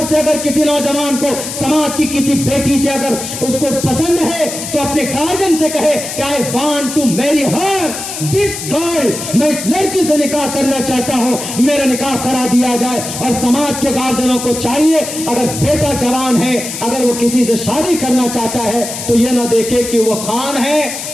سے اگر کسی نوجوان کو سماج کی کسی بیٹی سے اگر اس کو پسند ہے تو اپنے گارجن سے کہے کہ I want to marry her, this girl, میں اس لڑکی سے نکاح کرنا چاہتا ہوں, میرا نکاح کرا دیا جائے. اور سماج کے گارجنوں کو چاہیے اگر بیٹا جوان ہے, اگر وہ کسی سے شادی کرنا چاہتا ہے تو یہ نہ دیکھے کہ وہ خان ہے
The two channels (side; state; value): left; noise; hiss, 7 dB below the sound